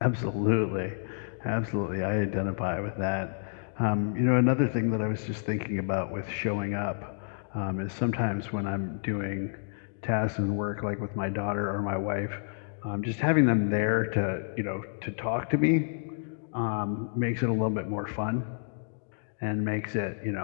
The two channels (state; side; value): silent; right; digital silence